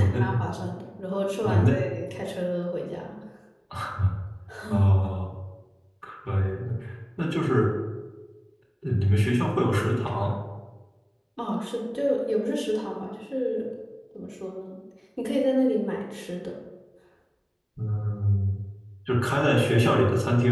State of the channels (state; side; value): identical; both; correlation 1.00